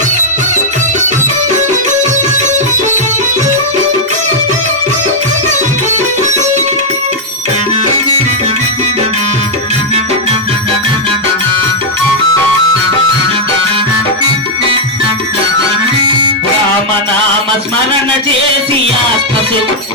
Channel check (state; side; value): normal; both; correlation -0.03